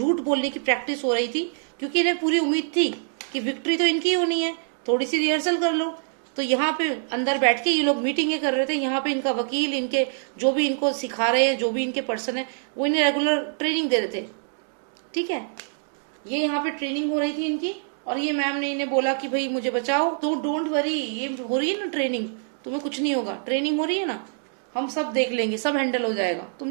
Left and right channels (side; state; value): left; silent; digital silence